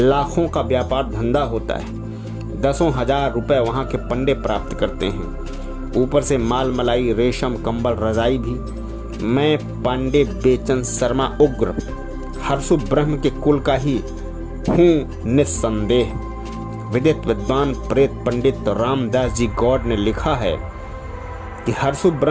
का व्यापार धंधा होता है। 10,000 रुपए वहाँ के पंडे प्राप्त करते हैं। ऊपर से माल मलाई, रेशम, कंबल, रजाई भी। मैं पांडे बेचन शर्मा उग्र हर्षु ब्रह्म के कुल का ही हूँ निस्संदेह। विदित विद्वान प्रेत पंडित रामदास जी गौड़ ने लिखा है कि हर्षु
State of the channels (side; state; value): both; identical; correlation 1.00